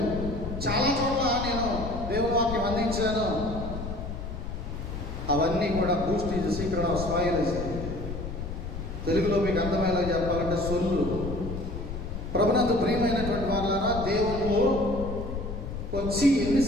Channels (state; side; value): noise; left; rumble, 7 dB below the sound